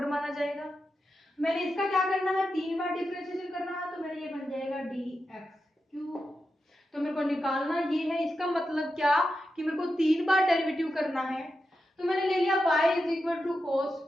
माना जाएगा। मैंने इसका क्या करना है 3 बार डिफरेंशिएशन करना है तो मेरा ये बन जाएगा dx³ तो मेरे को निकालना ये है इसका मतलब क्या कि मेरे को 3 बार डेरिवेटिव करना है तो मैंने ले लिया y is equal to cos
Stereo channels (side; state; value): both; normal; correlation 0.89